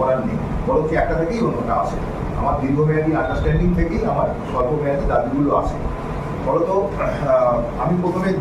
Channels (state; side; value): identical; both; correlation 1.00